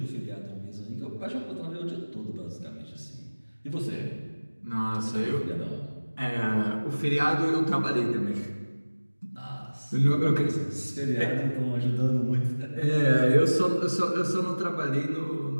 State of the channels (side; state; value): both; inverted; correlation -1.00